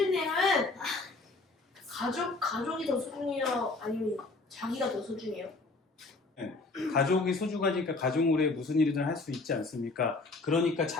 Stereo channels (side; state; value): right; quieter; 3.5 dB